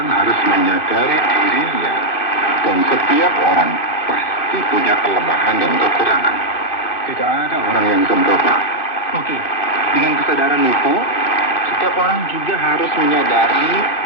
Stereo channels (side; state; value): right; late; 2.6 ms